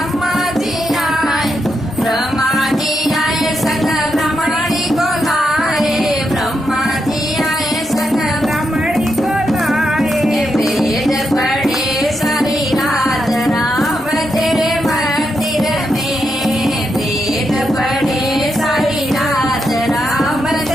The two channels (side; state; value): both; normal; correlation 0.83